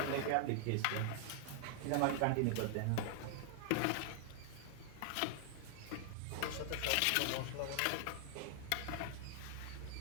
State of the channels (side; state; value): both; different; correlation 0.00